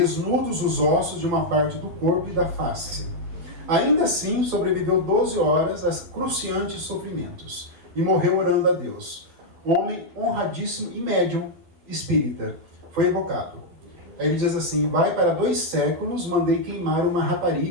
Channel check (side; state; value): left; late; 12 ms